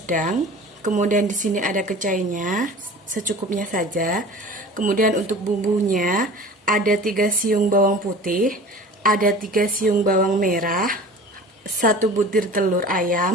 kemudian di sini ada kecainya secukupnya saja, kemudian untuk bumbunya ada 3 siung bawang putih, ada 3 siung bawang merah, 1 butir telur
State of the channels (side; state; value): both; normal; correlation 0.41